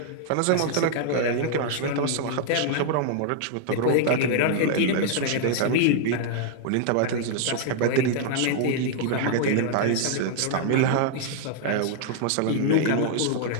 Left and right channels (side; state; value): both; different; correlation 0.00